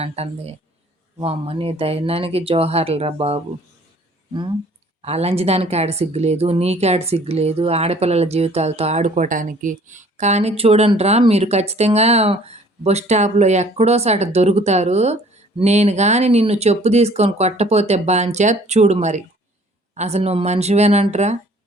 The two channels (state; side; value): normal; both; correlation 0.55